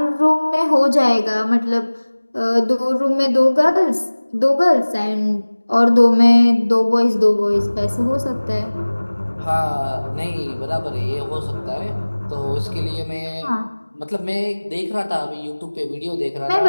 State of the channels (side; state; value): both; inverted; correlation -1.00